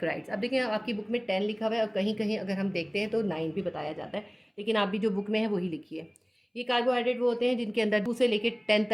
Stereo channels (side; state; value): both; identical; correlation 1.00